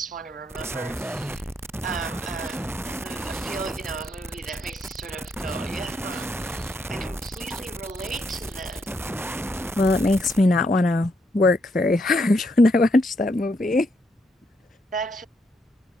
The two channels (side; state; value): both; normal; correlation 0.77